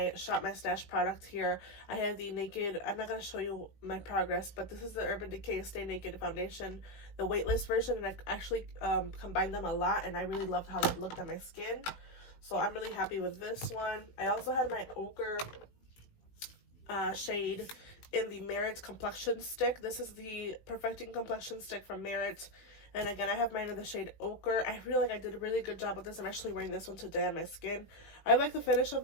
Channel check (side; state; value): right; late; 18 ms